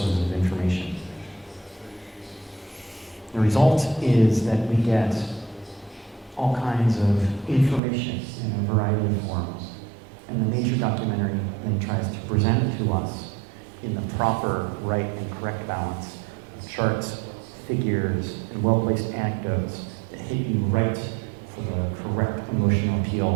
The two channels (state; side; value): drops out; left; at 7.8 s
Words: of information. The result is that we get all kinds of information in a variety of forms, and the nature documentary then tries to present it to us in the proper, right, and correct balance of charts, figures, and well-placed anecdotes that hit you right for the correct emotional